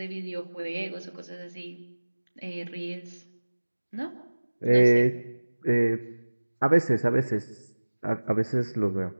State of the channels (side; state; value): both; inverted; correlation -1.00